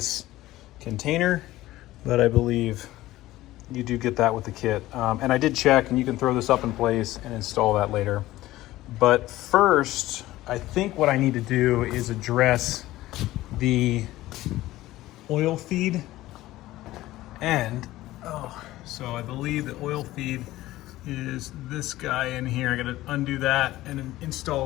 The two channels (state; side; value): quieter; right; 16.4 dB